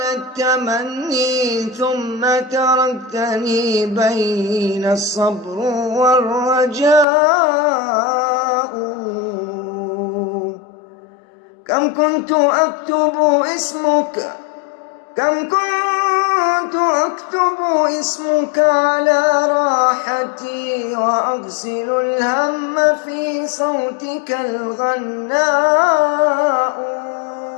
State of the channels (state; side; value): drops out; right; at 7.1 s